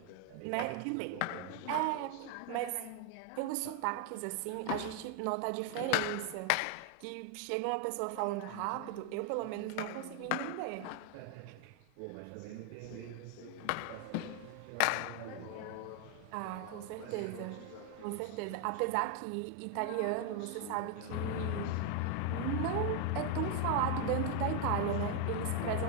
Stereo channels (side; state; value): both; different; correlation 0.01